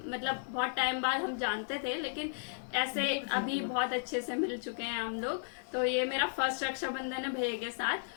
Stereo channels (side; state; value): right; silent; digital silence